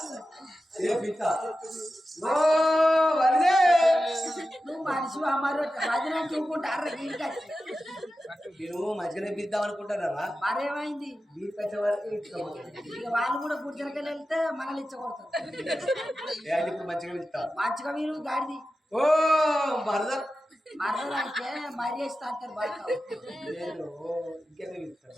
నువ్వు మనిషి అమ్మారు భజన చూపుకుంటారు నేను మంచిగానే పిద్దాం అనుకుంటారా మరేమైంది మీకు వచ్చే వరకు ఇక వాళ్ళు కూడా గుర్జలకెళ్ళి వెళ్తే మనల్ని ఇచ్చకూడతారు ఇప్పుడు మంచిగా పిలుస్తా మంచిగా మీరు గాడిది ఓ మరదలు మరదలంటే మర్యాద అంటారు బాగా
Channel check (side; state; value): both; normal; correlation 0.93